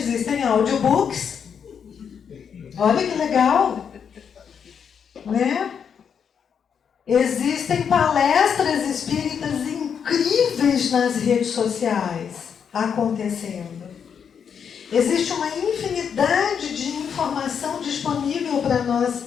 audiobooks. Olha que legal, né? Existem palestras espíritas incríveis nas redes sociais acontecendo. Existe uma infinidade de informação disponível para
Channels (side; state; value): right; quieter; 7.3 dB